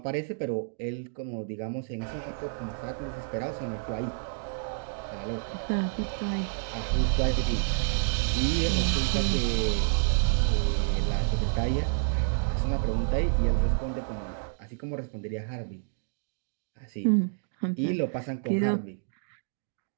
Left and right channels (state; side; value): silent; left; digital silence